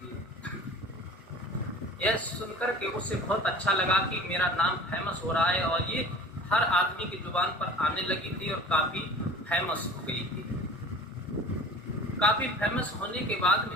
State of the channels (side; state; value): both; normal; correlation 0.43